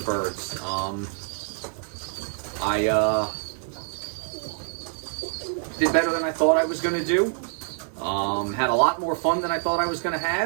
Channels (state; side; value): silent; left; digital silence